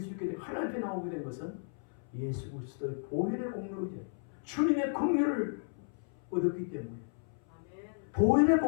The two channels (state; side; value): silent; right; 55 dB below the other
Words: 있게 되고 하나님 앞에 나오게 된 것은 예수 그리스도의 보혈의 공로이자 주님의 긍휼을 얻었기 때문에 보혈의